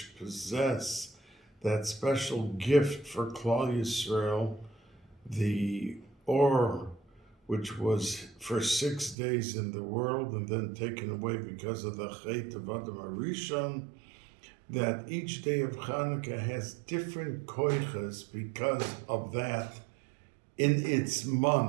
possess that special gift for Klal Yisrael, the Or, which was for 6 days in the world and then taken away because of the Chet of Adam HaRishon, that each day of Hanukkah has different koiches because of that in its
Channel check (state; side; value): drops out; left; at 9.2 s